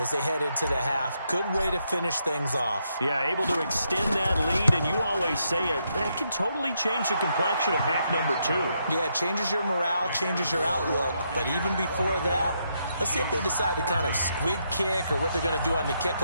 they head into the half. Good way to finish things off. Yeah, able to extend that lead, and you always say it, that can totally change the complexion of half number 2. Yeah, it changes your morale, changes your outlook. But even before that, let's see if they decide to kind of squib kick or what they're going to do on the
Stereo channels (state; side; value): inverted; both; correlation -0.78